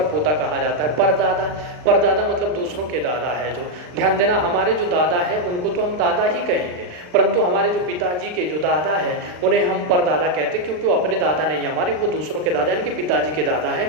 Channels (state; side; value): late; left; 40 ms